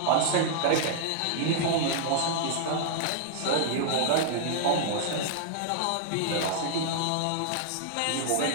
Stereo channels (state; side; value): different; both; correlation -0.01